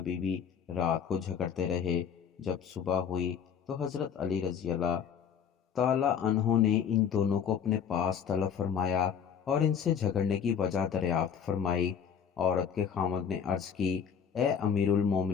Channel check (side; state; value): right; quieter; 7.6 dB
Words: بیوی رات کو جھگڑتے رہے۔ جب صبح ہوئی تو حضرت علی رضی اللہ تعالیٰ عنہ نے ان دونوں کو اپنے پاس طلب فرمایا اور ان سے جھگڑنے کی وجہ دریافت فرمائی۔ عورت کے خاوند نے عرض کی، اے امیر